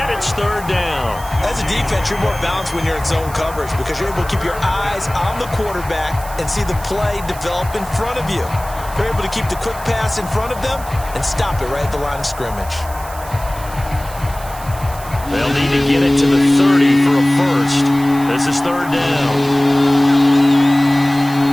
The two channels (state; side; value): noise; right; hiss, 16 dB below the sound